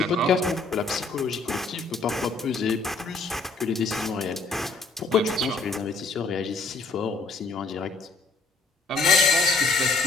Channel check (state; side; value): quieter; right; 3.7 dB